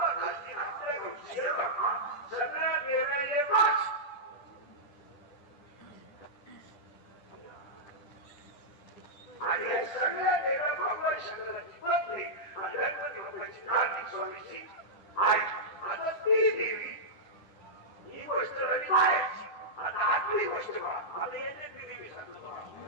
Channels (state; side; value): late; right; 10 ms